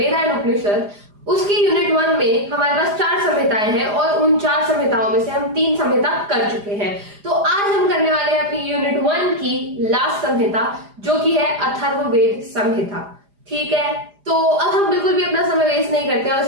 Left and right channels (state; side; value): late; left; 4.9 ms